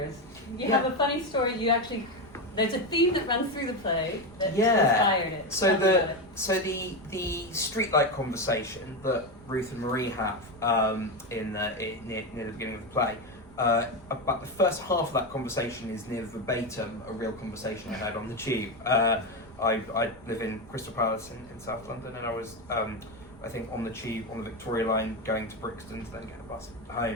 You have a funny story. There's a theme that runs through the play that inspired it. So the streetlight conversation that Ruth and Marie have near the beginning of the play, about the first half of that conversation is near verbatim a real conversation I had on the tube. I live in Crystal Palace in South London, and I was I think on the tube on the Victoria line going to Brixton to then get a bus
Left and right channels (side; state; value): right; noise; rumble, 21 dB below the sound